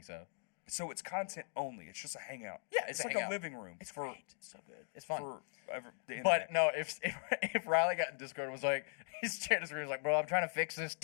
so. So it's content only. It's just a hangout. Yeah, it's a like hangout. a living room. It's for great. It's so good. It's fun. the internet. But no, if Riley got in Discord and was like, his chat screen was like, bro, I'm trying to fix this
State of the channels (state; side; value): silent; right; 52 dB below the other